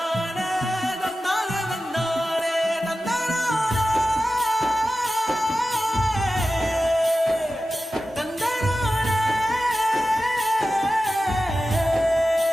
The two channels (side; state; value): both; normal; correlation 0.94